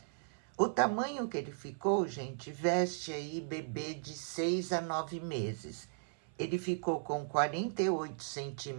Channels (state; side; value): silent; left; 53 dB below the other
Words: O tamanho que ele ficou, gente, veste aí bebê de 6 a 9 meses. Ele ficou com 48